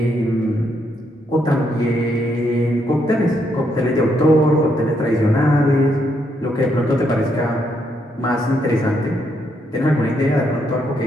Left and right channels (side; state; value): both; normal; correlation 0.76